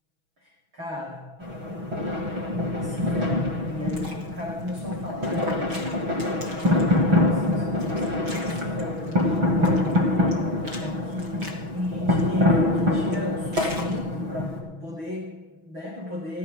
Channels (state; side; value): late; left; 6.2 ms